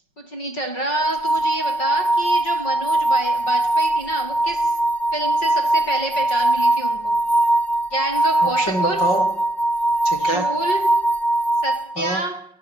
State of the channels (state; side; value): late; right; 5.4 ms